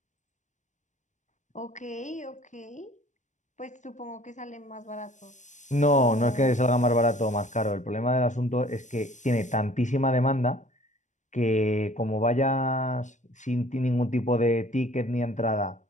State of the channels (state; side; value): late; right; 0.35 ms